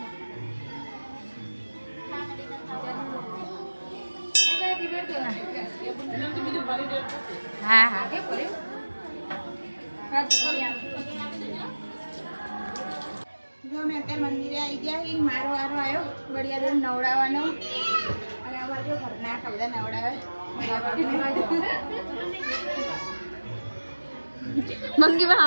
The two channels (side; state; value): both; inverted; correlation -1.00